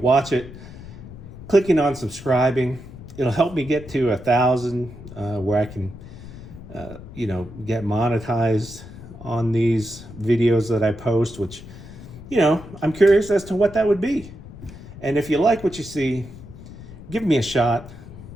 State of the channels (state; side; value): noise; left; rumble, 15 dB below the sound